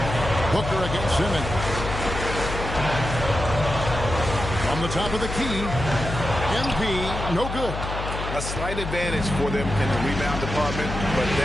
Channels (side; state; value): left; noise; hum, 6 dB below the sound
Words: Booker against Simmons. From the top of the key. MP, no good. A slight advantage for them in the rebound department, but